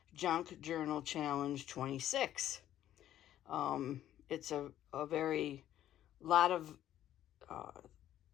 Junk Journal Challenge 26. It's a very lot of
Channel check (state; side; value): quieter; right; 12.1 dB